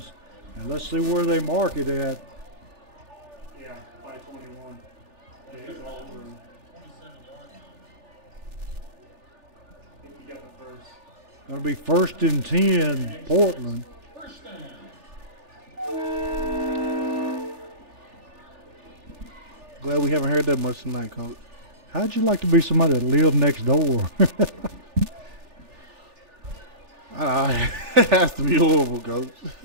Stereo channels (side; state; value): left; late; 3.4 ms